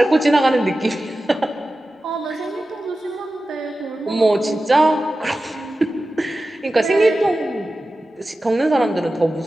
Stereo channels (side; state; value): both; normal; correlation 0.94